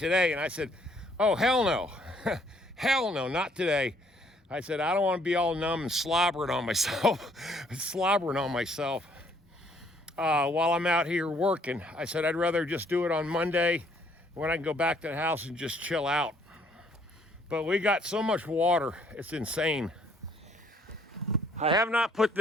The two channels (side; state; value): both; normal; correlation 0.64